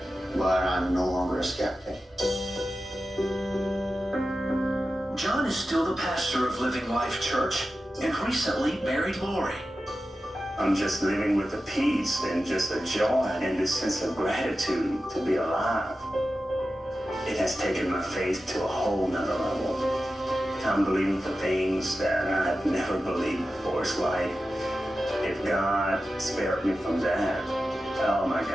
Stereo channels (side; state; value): both; normal; correlation 0.93